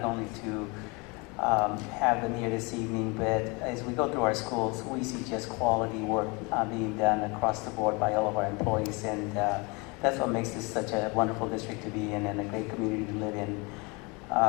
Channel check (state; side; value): quieter; right; 28.5 dB